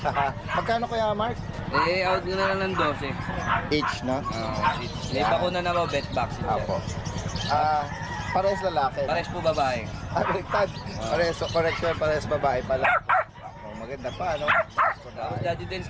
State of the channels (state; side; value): identical; both; correlation 1.00